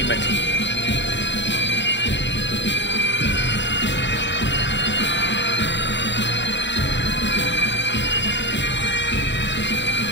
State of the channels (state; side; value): late; right; 0.52 ms